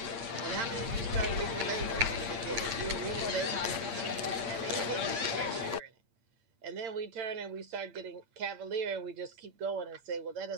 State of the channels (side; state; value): left; late; 8.7 ms